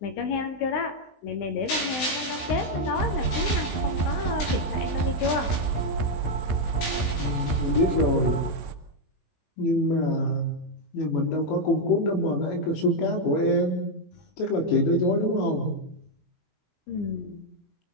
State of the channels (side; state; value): right; late; 19 ms